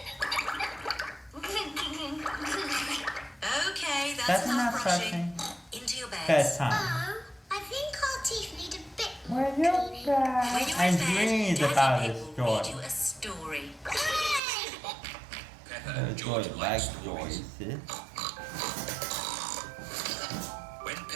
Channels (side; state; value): left; drops out; at 14.4 s